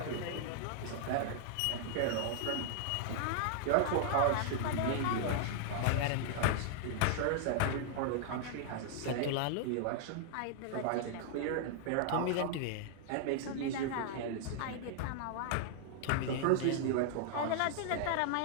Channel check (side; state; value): both; different; correlation -0.01